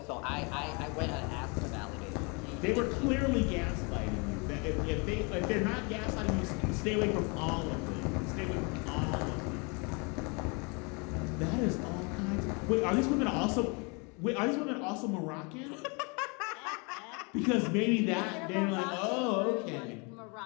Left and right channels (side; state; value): right; quieter; 31.7 dB